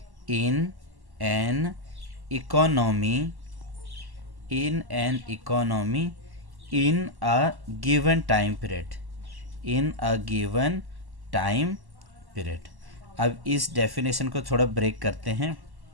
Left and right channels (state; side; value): late; left; 1.1 ms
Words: in a given time period. अब इस definition को थोड़ा break करते हैं.